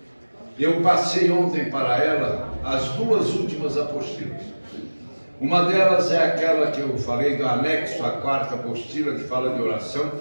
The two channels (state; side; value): inverted; both; correlation -1.00